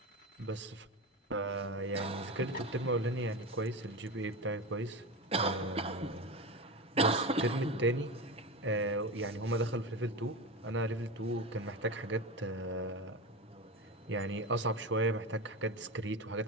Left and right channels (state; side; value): normal; both; correlation 0.23